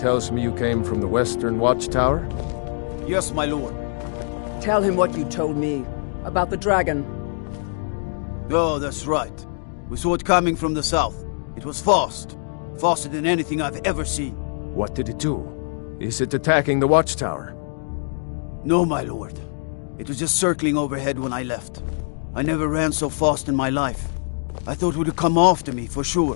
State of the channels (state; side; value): silent; right; digital silence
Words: tells me you came from the Western Watchtower? Yes, my lord. Tell him what you told me about the dragon. Oh, that's right. We saw it coming from the south. It was fast. Faster than anything I've ever seen. What did it do? Is it attacking the Watchtower? No, my lord. It was just circling overhead when I left. I never ran so fast in my life. I thought it would come after me, for